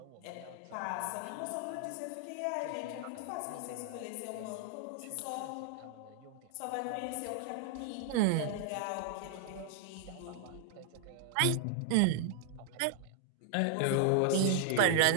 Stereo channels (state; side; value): different; both; correlation 0.00